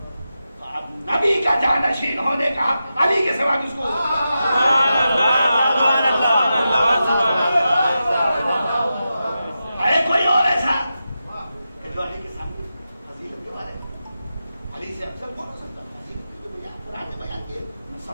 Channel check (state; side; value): inverted; both; correlation -0.90